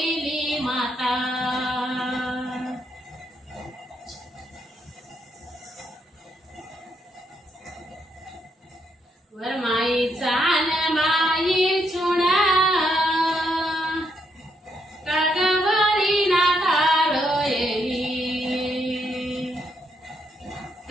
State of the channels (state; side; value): normal; both; correlation 0.76